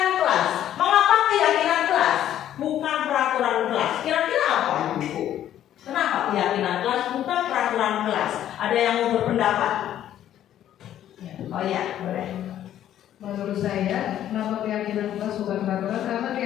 kelas. Mengapa keyakinan kelas bukan peraturan kelas? Kira-kira apa Ibu? Kenapa keyakinan kelas bukan peraturan kelas? Ada yang mau berpendapat? Oh ya, boleh. Menurut saya, kenapa keyakinan kelas bukan peraturan? Karena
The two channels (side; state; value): right; quieter; 11.4 dB